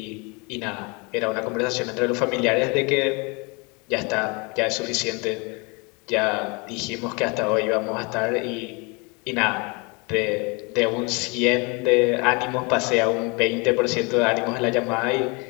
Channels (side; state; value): right; quieter; 29.7 dB